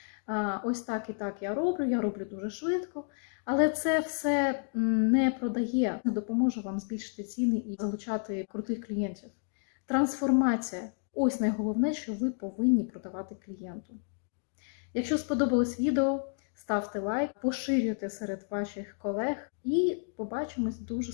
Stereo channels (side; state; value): right; silent; 57 dB below the other